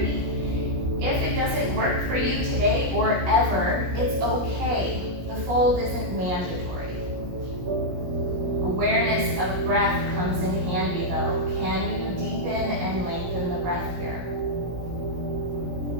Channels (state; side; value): late; left; 17 ms